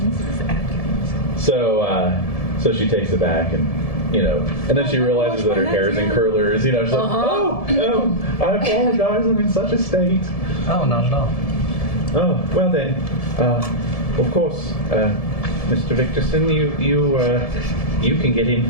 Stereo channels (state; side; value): late; right; 1.7 ms